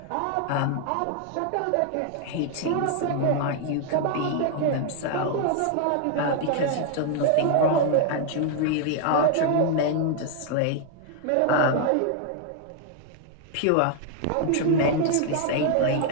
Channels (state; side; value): different; both; correlation 0.00